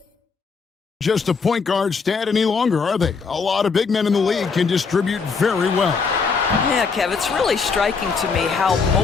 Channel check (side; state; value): right; quieter; 5.1 dB